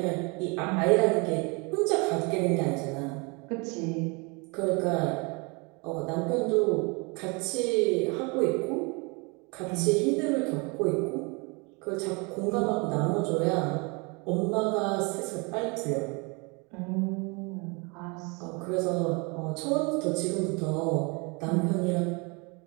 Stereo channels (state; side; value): quieter; left; 30.3 dB